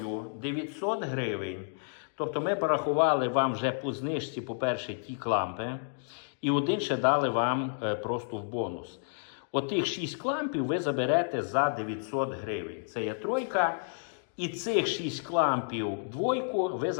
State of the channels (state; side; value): silent; right; digital silence